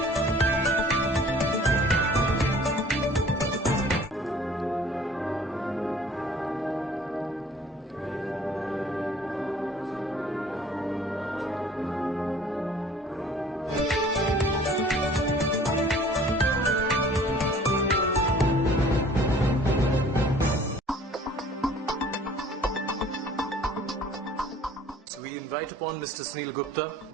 We invite upon Mr. Sunil Gupta.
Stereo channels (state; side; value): normal; both; correlation 0.52